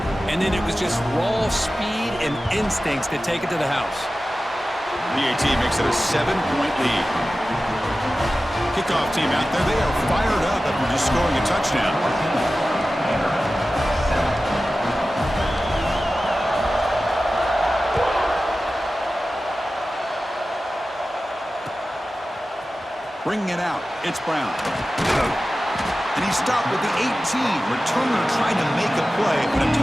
And then it was just raw speed and instincts to take it to the house. PAT makes it a 7-point lead. Kickoff team out there. They are fired up after just scoring a touchdown. Bringing it out, it's Brown. And he stopped with the 18. Returner trying to make a play, but a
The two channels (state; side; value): normal; both; correlation 0.95